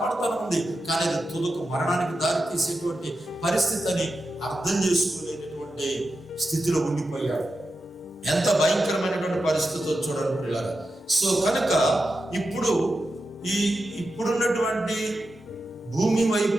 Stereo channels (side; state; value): both; normal; correlation 0.90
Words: ఉంది. కానీ అది తుదకు మరణానికి దారి తీసేటువంటి పరిస్థితి అని అర్థం చేసుకోలేనటువంటి స్థితిలో ఉండిపోయాడు. ఎంత భయంకరమైనటువంటి పరిస్థితి చూడండి పిల్లలు. సో కనుక ఇప్పుడున్నటువంటి భూమి